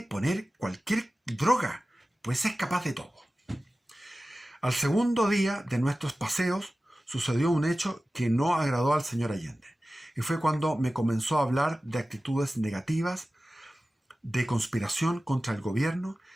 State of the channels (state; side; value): normal; both; correlation 0.96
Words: poner cualquier droga, pues es capaz de todo. Al segundo día de nuestros paseos sucedió un hecho que no agradó al señor Allende, y fue cuando me comenzó a hablar de actitudes negativas, de conspiración contra el gobierno,